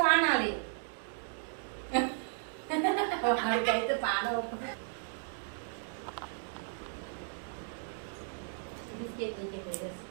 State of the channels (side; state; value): left; silent; digital silence